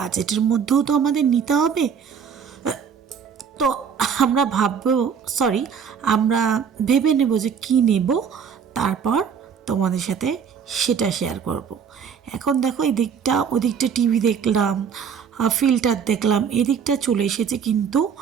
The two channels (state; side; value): quieter; left; 7.1 dB